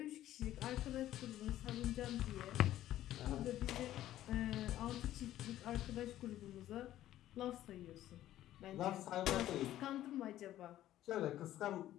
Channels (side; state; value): right; quieter; 13.3 dB